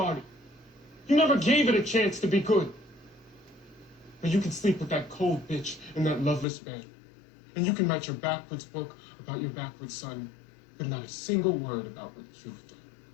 You never gave it a chance to be good. But you can sleep with that cold bitch in that loveless bed. And you can write your backwards book about your backwards son, but not a single word about what you've done.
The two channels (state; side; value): drops out; right; at 6.5 s